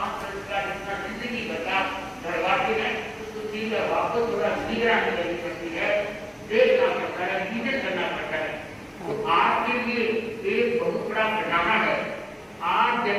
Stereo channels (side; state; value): both; identical; correlation 1.00